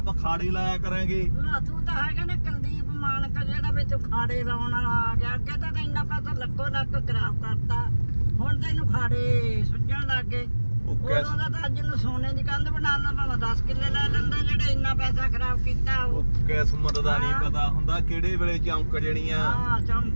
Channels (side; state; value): both; inverted; correlation -1.00